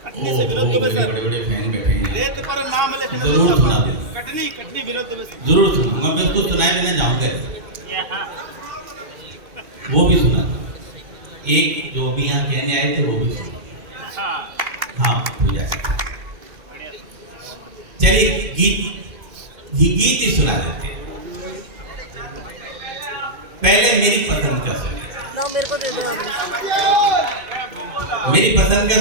कटनी से विरोध में सर। बड़े फैन बैठे हैं। रेत पर नाम लिखने से जरूर सुना दे। कटनी विरोध में जरूर सुना। मैं बिल्कुल सुनाए बिना जाऊंगा। वो भी सुना था। एक जो भी यहाँ कहने आए थे वो भी सुना। हाँ पूजा। चलिए गीत ही सुना देते हैं। पहले मेरी पसंद का सुनिए। मेरे को दे दो। मेरी पसंद का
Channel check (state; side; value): late; left; 2.2 ms